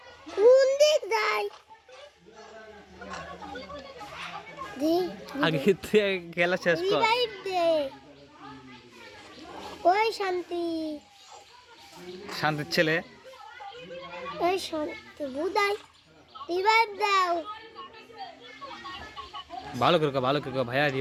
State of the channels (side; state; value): both; identical; correlation 1.00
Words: কোন দিক যাই দি আগে তুই খেলা শেষ কর রিভাইভ দে ওই শান্তির ছেলে ওই শান্তি বুদাই রিভাইভ দাও ভালো করে ভাইয়া